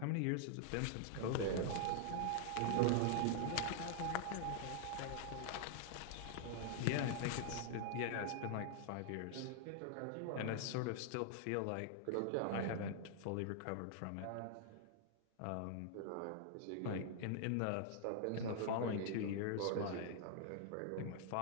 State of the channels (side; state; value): both; different; correlation -0.01